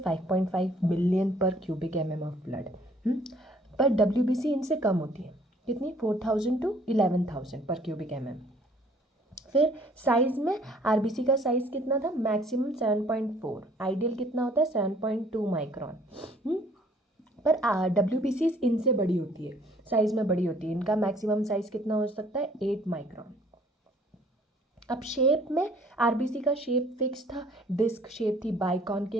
बिलियन पर क्यूबिक एम ऑफ ब्लड। पर डब्ल्यूबीसी इनसे कम होती है, कितनी? 4,000 टू 11,000 पर क्यूबिक एम। फिर साइज में आरबीसी का साइज कितना था? मैक्सिमम 7.4, आइडियल कितना होता है? 7.2 माइक्रोन। पर डब्ल्यूबीसी इनसे बड़ी होती है, साइज में बड़ी होती है। इनका मैक्सिमम साइज कितना हो सकता है? 8 माइक्रोन। अब शेप में आरबीसी का शेप फिक्स था, डिस्क शेप थी, बाइकॉन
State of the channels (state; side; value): normal; both; correlation 0.58